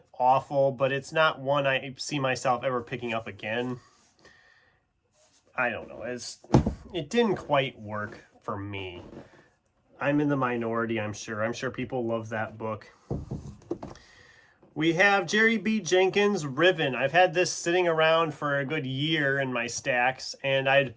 awful, but it's not one I see myself ever picking up again. I don't know. It didn't quite work for me. I'm in the minority, I'm sure. I'm sure people love that book. We have Jerry B. Jenkins' Riven. I've had this sitting around for a good year in my stacks, and I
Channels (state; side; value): identical; both; correlation 1.00